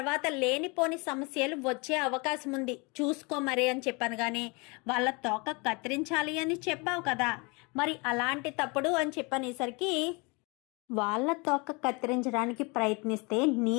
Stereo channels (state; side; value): quieter; right; 29.2 dB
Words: లేనిపోని సమస్యలు వచ్చే అవకాశం ఉంది, చూసుకో మరి అని చెప్పాను. కానీ వాళ్ళ తోక కత్తిరించాలి అని చెప్పావు కదా, మరి అలాంటి తప్పుడు అని చెప్పనేసరికి, వాళ్ళ తోక కత్తిరించడానికి ప్రయత్నిస్తే నీ